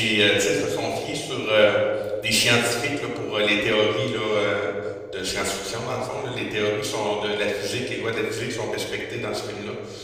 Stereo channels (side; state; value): both; identical; correlation 1.00